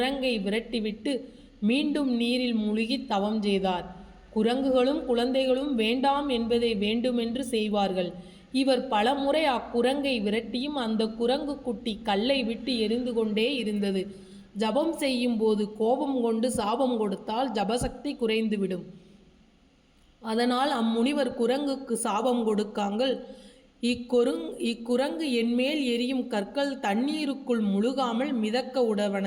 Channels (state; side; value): identical; both; correlation 1.00